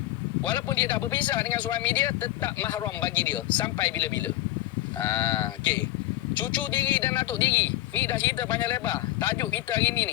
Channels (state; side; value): quieter; right; 15.7 dB